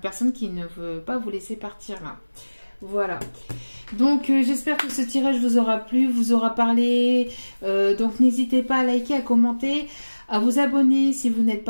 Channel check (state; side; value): inverted; both; correlation -1.00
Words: qui ne veut pas vous laisser partir là. Voilà. Donc, j'espère que ce tirage vous aura plu, vous aura parlé. Donc, n'hésitez pas à liker, à commenter, à vous abonner si vous n'êtes